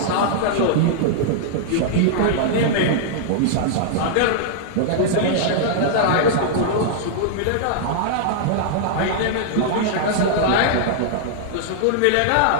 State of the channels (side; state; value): both; different; correlation -0.01